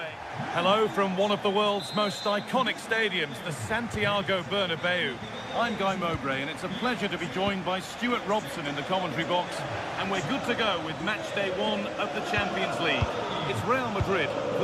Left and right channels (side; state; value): both; identical; correlation 1.00